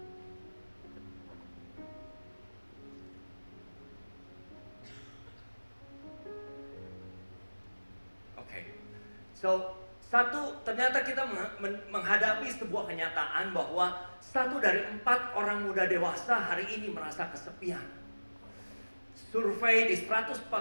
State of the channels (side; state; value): both; inverted; correlation -1.00